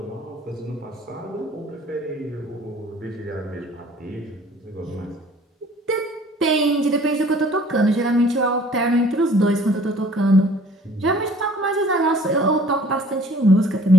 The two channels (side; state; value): both; normal; correlation 0.53